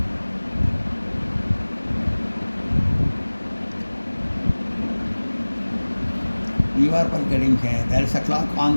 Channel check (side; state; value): both; inverted; correlation -1.00